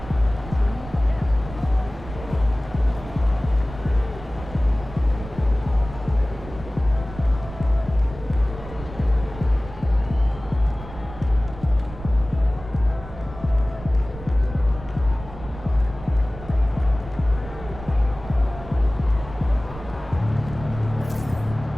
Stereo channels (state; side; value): noise; right; rumble, 14 dB below the sound